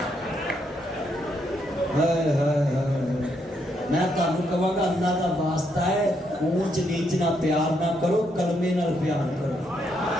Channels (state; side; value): normal; both; correlation 0.76